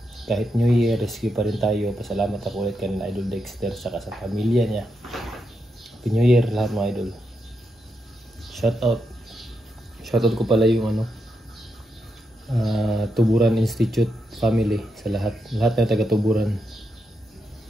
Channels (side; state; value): both; normal; correlation 0.83